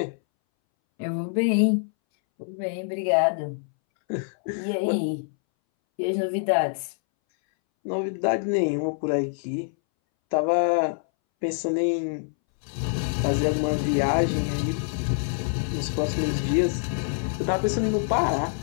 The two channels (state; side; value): silent; right; 61 dB below the other